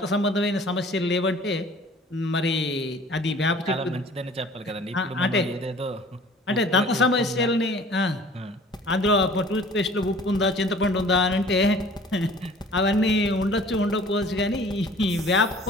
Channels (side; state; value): both; normal; correlation 0.49